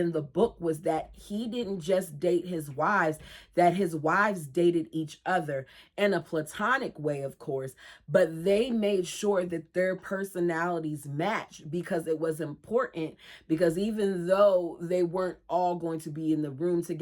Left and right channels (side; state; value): both; identical; correlation 1.00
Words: the book was that he didn't just date his wives, that his wives dated each other in a platonic way, of course, but they made sure that their personalities matched, because it was important, because even though they weren't all going to be in the room